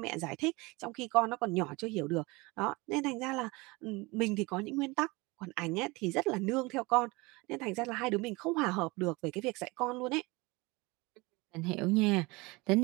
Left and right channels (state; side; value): quieter; left; 24.3 dB